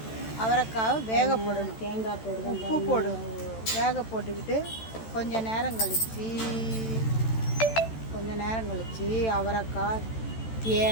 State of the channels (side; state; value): right; late; 13 ms